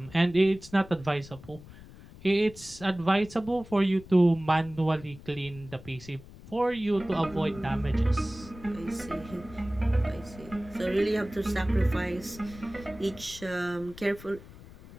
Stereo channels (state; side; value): noise; left; rumble, 18 dB below the sound